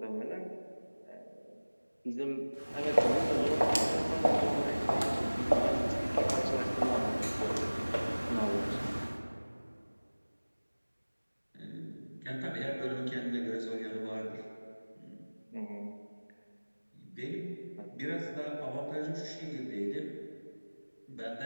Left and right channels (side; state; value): both; inverted; correlation -1.00